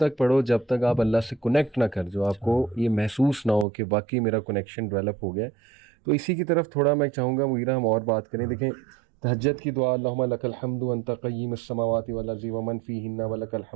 پڑھو جب تک آپ اللہ سے کنیکٹ نہ کر، جو آپ کو یہ محسوس نہ ہو کہ واقعی میرا کنیکشن ڈیولپ ہو گیا. تو اسی کی طرف تھوڑا میں چاہوں گا مغیرہ ہم اور بات کریں. دیکھیں تہجد کی دعا، اللہم لک الحمد انت قیم السماوات والارض ومن فیہن ولک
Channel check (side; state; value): left; drops out; at 3.7 s